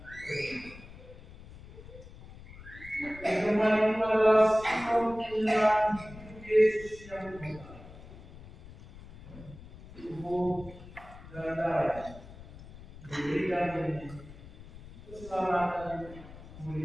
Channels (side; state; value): left; noise; rumble, 17 dB below the sound